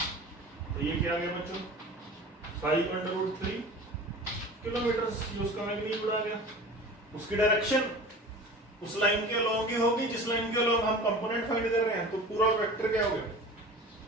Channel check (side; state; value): both; normal; correlation 0.38